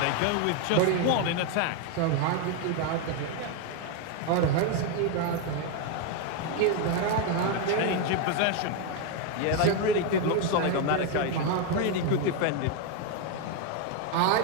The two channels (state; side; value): different; both; correlation 0.01